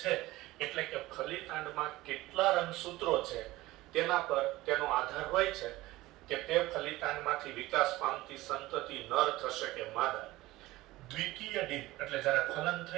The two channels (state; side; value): quieter; left; 18.2 dB